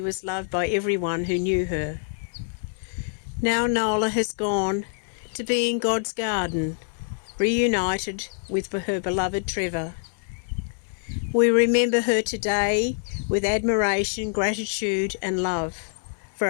was loved by everyone who knew her. Now Nola has gone to be in God's garden, reunited with her beloved Trevor. We remember her today with admiration, gratitude and love for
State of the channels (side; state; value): right; silent; 61 dB below the other